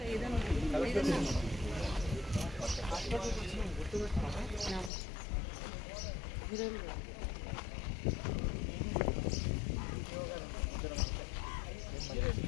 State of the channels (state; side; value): drops out; right; at 4.9 s